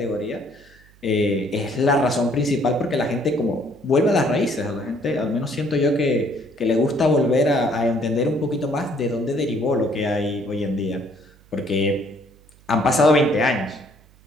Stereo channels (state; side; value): noise; right; hum, 28 dB below the sound